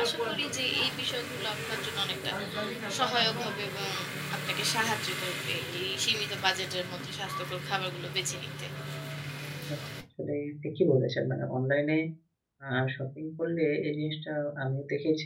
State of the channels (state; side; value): identical; both; correlation 1.00